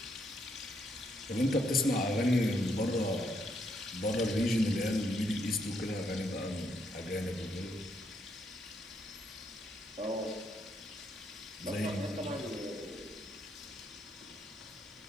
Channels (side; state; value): both; normal; correlation 0.75